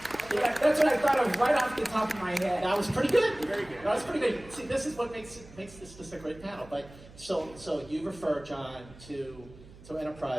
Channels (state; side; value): noise; right; hum, 20 dB below the sound